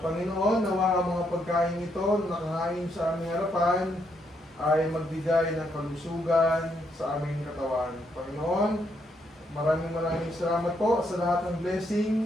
nawa ang mga pagkain ito na nakahain sa aming harapan ay magbigay ng kalusugan sa aming katawan. Panginoon, maraming salamat po sa lahat ng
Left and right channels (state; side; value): normal; both; correlation 0.76